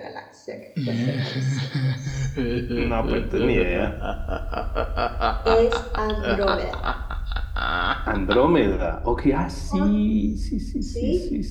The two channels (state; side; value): identical; both; correlation 1.00